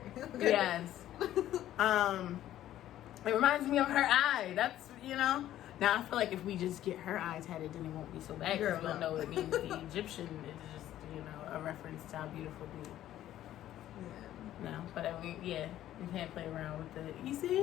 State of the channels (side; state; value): right; quieter; 12.8 dB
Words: Yes. It reminds me of her eye. That's, Now I feel like if we just get her eye tatted, then it won't be so bad because we'll know it means the Egyptian. It's just, a reference to how beautiful we. Yeah. No, but I mean, you can't play around with it. You